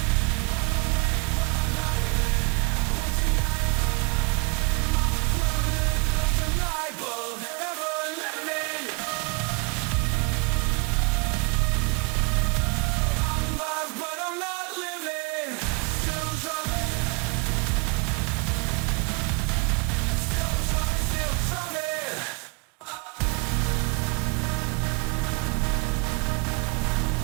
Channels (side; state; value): left; quieter; 31.6 dB